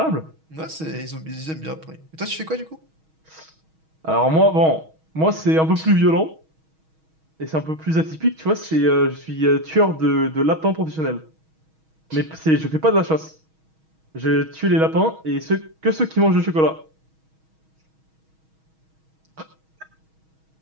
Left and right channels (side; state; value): left; late; 6.3 ms